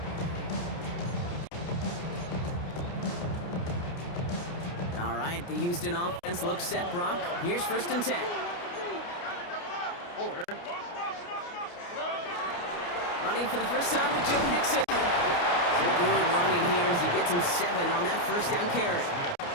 All right, the Houston offense looks set, Brock. Here's 1st and 10. Running for the first time with Joe Mixon. So good running here as he gets him 7 on that 1st down carry.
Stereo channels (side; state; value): right; late; 29 ms